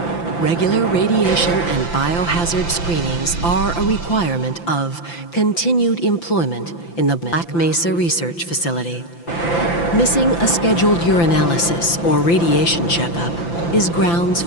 Regular radiation and biohazard screenings are a requirement of continued employment in the Black Mesa Research Facility. Missing a scheduled urinalysis or radiation checkup is grounds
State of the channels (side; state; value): right; late; 5.9 ms